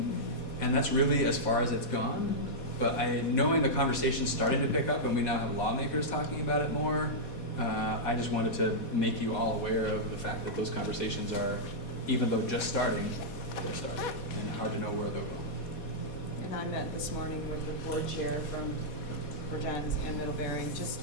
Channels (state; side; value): late; right; 4.2 ms